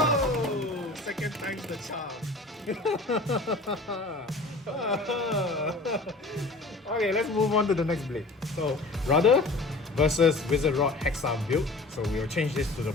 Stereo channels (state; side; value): quieter; right; 3.2 dB